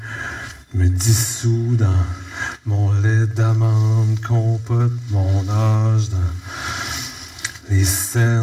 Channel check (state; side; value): identical; both; correlation 1.00